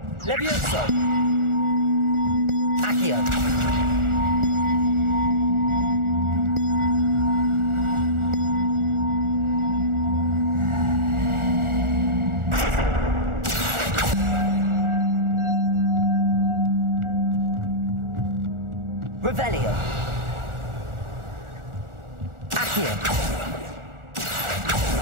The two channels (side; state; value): left; late; 1.4 ms